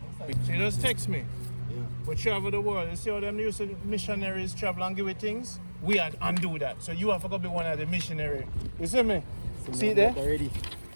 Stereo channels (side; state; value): both; inverted; correlation -1.00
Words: You just text me. Yeah. We travel the world. You see how them used to missionaries travel and give you things? We had undo that. So you have to go be one of the missionaries. You see me? So see there? Already.